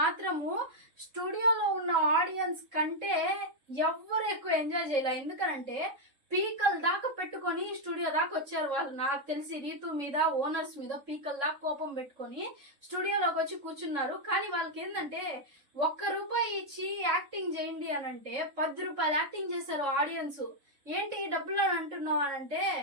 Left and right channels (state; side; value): late; left; 3.7 ms